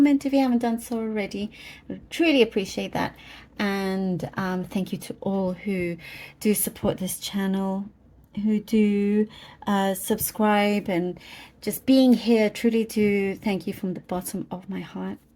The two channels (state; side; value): identical; both; correlation 1.00